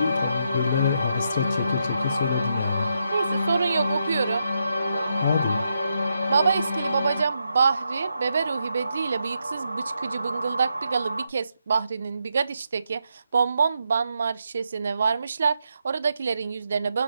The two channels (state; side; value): inverted; both; correlation -0.82